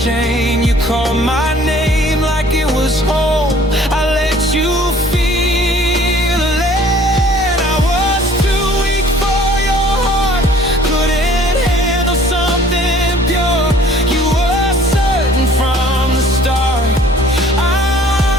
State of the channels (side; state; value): both; normal; correlation 0.54